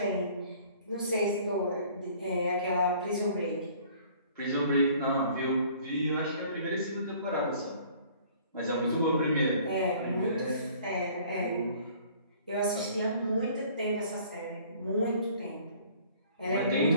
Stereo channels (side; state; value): both; inverted; correlation -0.54